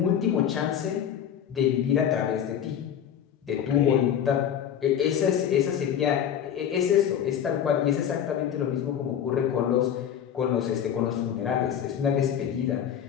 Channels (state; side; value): quieter; right; 9.2 dB